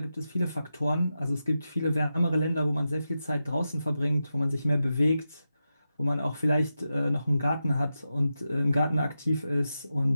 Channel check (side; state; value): both; inverted; correlation -0.90